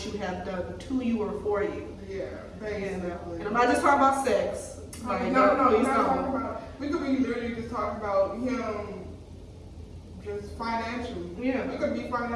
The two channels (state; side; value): identical; both; correlation 1.00